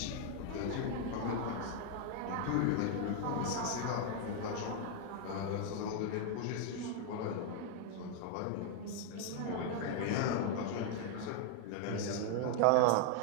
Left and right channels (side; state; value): both; different; correlation 0.00